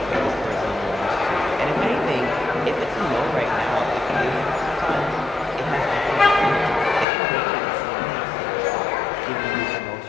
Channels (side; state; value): right; drops out; at 7.1 s